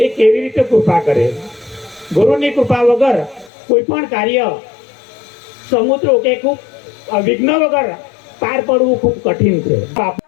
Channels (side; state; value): right; drops out; at 3.5 s